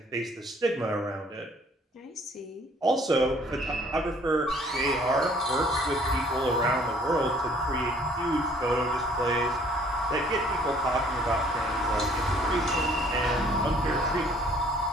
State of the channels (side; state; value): both; normal; correlation 0.58